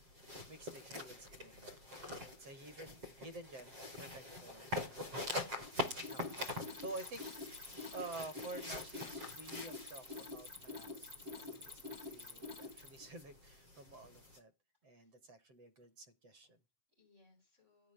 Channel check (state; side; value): late; left; 7.4 ms